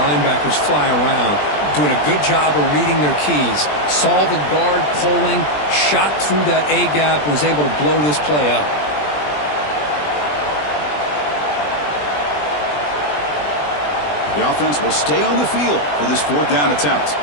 fly around, doing a good job of reading their keys. Saw the guard pulling, shot through that A-gap, was able to blow this play up. The offense will stay on the field for this 4th down attempt.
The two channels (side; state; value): right; late; 20 ms